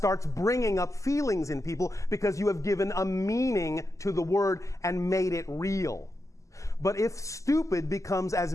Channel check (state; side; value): late; right; 0.16 ms